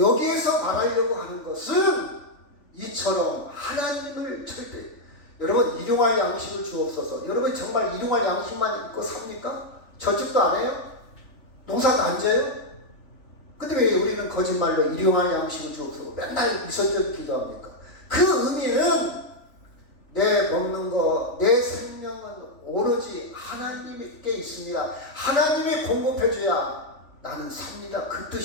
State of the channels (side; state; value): right; late; 3.4 ms